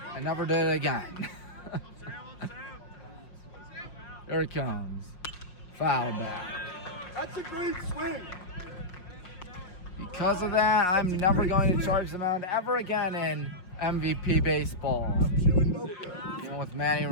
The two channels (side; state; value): right; late; 5.5 ms